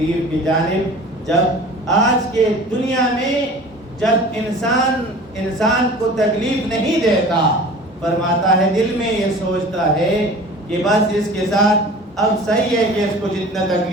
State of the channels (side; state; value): both; normal; correlation 0.41